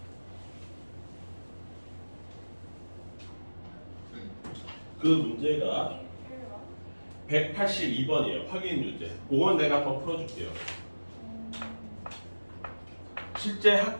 그 문제가 182번이에요. 확인 유제. 그건 내가 한번 풀어줄게요. 실제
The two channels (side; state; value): both; inverted; correlation -1.00